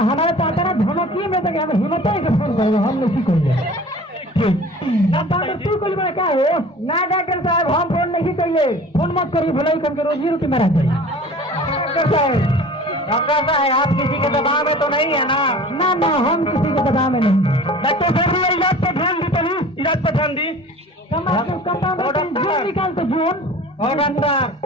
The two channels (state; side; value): normal; both; correlation 0.43